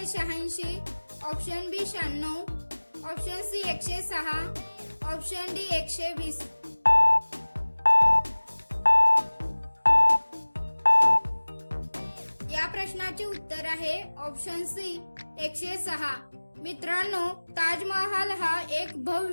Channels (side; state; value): both; inverted; correlation -1.00